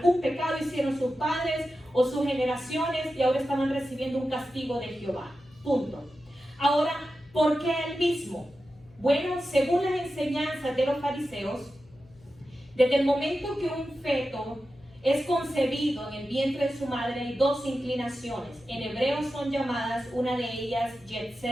pecado hicieron sus padres o sus generaciones y ahora estaban recibiendo un castigo de Jehová. Punto. Ahora, ¿por qué él mismo? Bueno, según las enseñanzas de los fariseos, desde el momento que un feto es concebido en el vientre de su madre hay dos inclinaciones. En hebreo son llamadas, una de ellas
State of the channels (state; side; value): noise; left; hum, 27 dB below the sound